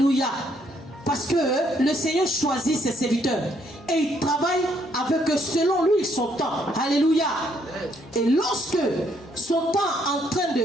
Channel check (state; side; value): normal; both; correlation 0.70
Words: Parce que le Seigneur choisit ses serviteurs. Et il travaille avec eux selon lui son temps. Alléluia. Et lorsque son temps est en train